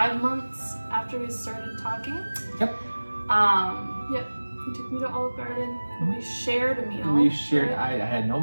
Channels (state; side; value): inverted; both; correlation -1.00